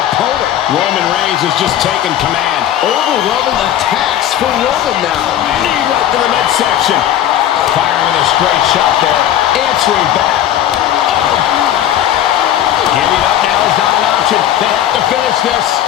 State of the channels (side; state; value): right; quieter; 11.3 dB